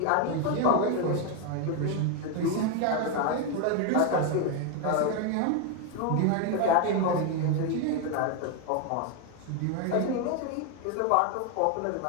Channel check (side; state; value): both; different; correlation 0.01